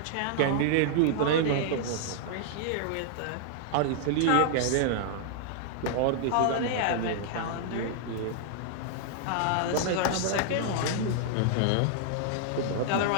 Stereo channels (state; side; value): different; both; correlation -0.01